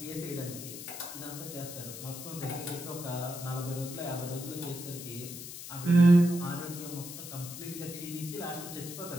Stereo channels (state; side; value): noise; left; hiss, 10 dB below the sound